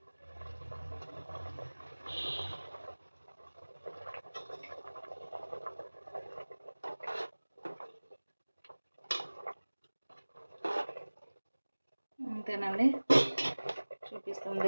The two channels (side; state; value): both; inverted; correlation -1.00